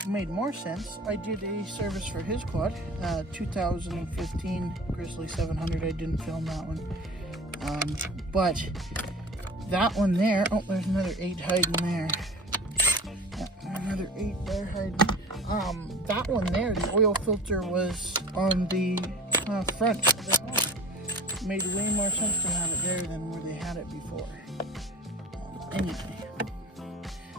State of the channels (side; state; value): both; normal; correlation 0.39